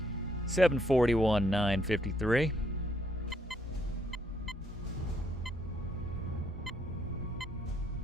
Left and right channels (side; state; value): both; normal; correlation 0.71